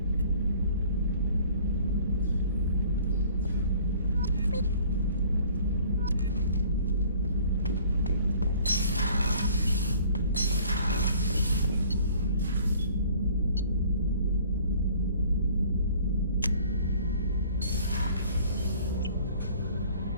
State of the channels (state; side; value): inverted; both; correlation -0.53